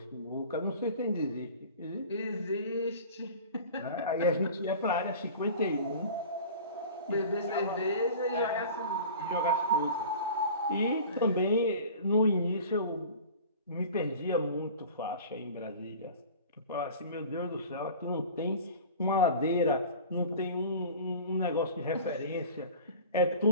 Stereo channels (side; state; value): both; inverted; correlation -0.40